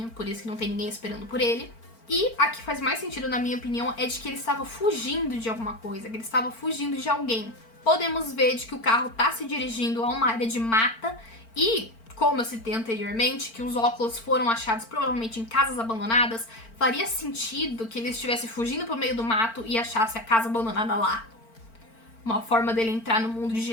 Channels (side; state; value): right; late; 4.4 ms